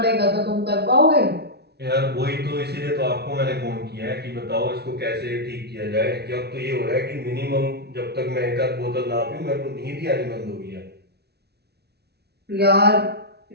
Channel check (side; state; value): left; late; 0.48 ms